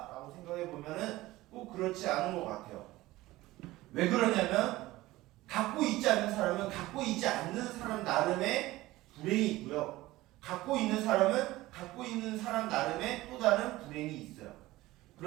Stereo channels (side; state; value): left; quieter; 17.9 dB